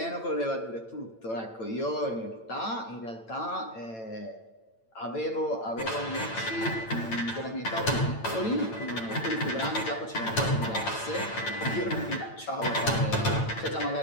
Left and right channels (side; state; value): right; late; 8.9 ms